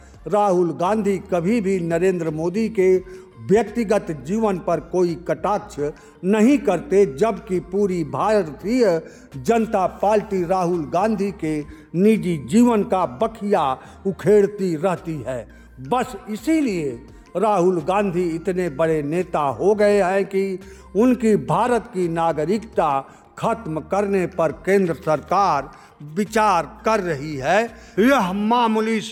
राहुल गांधी कभी भी नरेंद्र मोदी के व्यक्तिगत जीवन पर कोई कटाक्ष नहीं करते, जबकि पूरी भारतीय जनता पार्टी राहुल गांधी के निजी जीवन का बखिया उखेड़ती रहती है। बस इसीलिए राहुल गांधी इतने बड़े नेता हो गए हैं कि उनकी भारत की नागरिकता खत्म करने पर केंद्र सरकार विचार कर रही है। यह मामूली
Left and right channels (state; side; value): identical; both; correlation 1.00